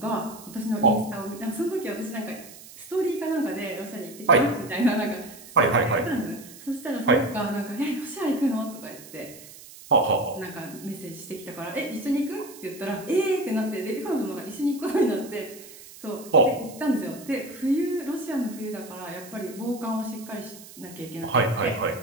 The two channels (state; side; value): noise; right; hiss, 18 dB below the sound